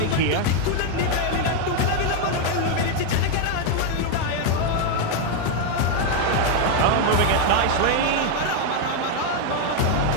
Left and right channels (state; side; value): different; both; correlation 0.01